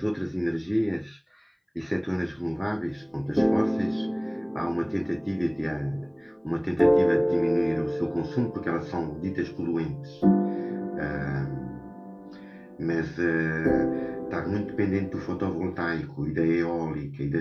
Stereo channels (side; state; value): both; identical; correlation 1.00